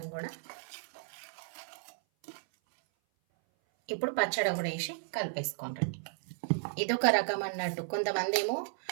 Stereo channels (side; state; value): left; silent; 55 dB below the other